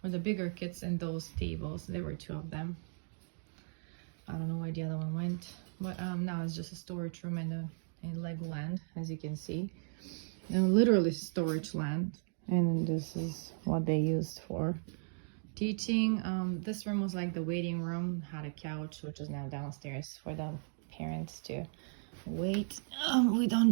the bigger kids, and those tables, there were two of them. I don't know where the other one went, but now it's just a storage room and Legoland, as you can see. And literally storage land, and this is what they used for teaching. This room was like the waiting room, had a couch, which is now downstairs for the parents to wait. We don't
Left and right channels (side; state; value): left; silent; 54 dB below the other